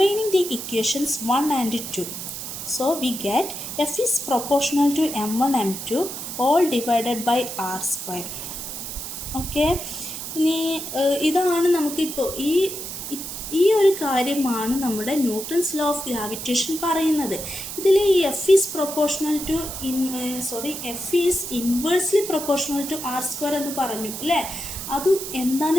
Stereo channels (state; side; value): noise; right; hiss, 7 dB below the sound